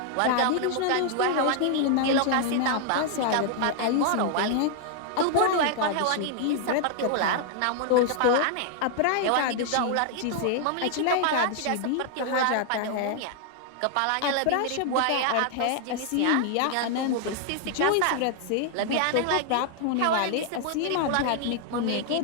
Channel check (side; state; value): both; different; correlation 0.00